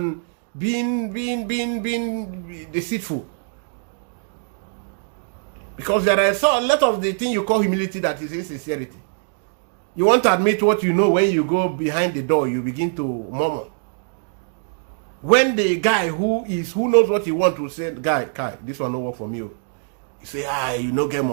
being deceitful? Because there are a lot of the thing you call humility that is insincerity. You want to admit what you know. When you go behind the door, you begin to murmur. When the guy who knows what he wants to say, guy, this one no work for me. You say, you no get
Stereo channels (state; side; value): silent; left; 64 dB below the other